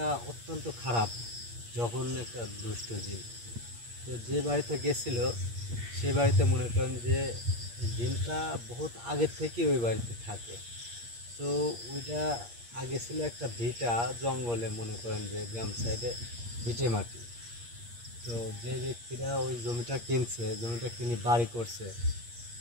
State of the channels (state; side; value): late; left; 8.5 ms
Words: অত্যন্ত খারাপ জঘন্য একটা দুষ্ট জীব। তো যে বাড়িতে গেছিল সে বাড়িতে মনে করেন যে দিনটা বহুত আগের থেকে ওই বাড়িতে থাকে। তো ওইটা আগে ছিল একটা ভিটা জঙ্গলে, মনে করেন যে গ্রাম সাইডে ভিটে মাটি। তো যে ব্যক্তিরা ওই জমিটা কিনছে, জমিটা কিনে বাড়ি করছে,